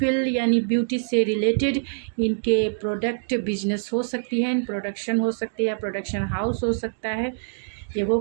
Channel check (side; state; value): left; silent; digital silence